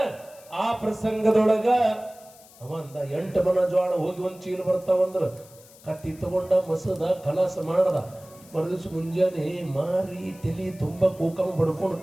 ಆ ಪ್ರಸಂಗದೊಳಗ ಅವಂದ 8 ಮನ ಜೋಳ ಹೋಗಿ ಒಂದು ಚೀಲ ಬರ್ತಾವಂದ್ರ ಕತ್ತಿ ತಗೊಂಡ ಮಸದ ಕಲಾಸ ಮಾಡದ. ಮರುದಿವ್ಸ ಮುಂಜಾನೆ ಮಾರಿ ತಲಿ ತುಂಬ ಕೂಕಮ ಬಡ್ಕೊಂಡು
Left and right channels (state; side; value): noise; left; hiss, 24 dB below the sound